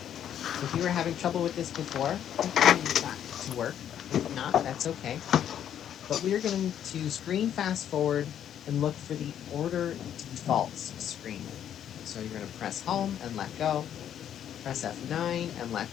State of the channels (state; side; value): quieter; right; 9.9 dB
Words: So if you were having trouble with this before, hopefully you got it to work. If not, that's okay. But we're going to screen fast forward and look for the order defaults screen. So you're going to press home and let go, press F9 and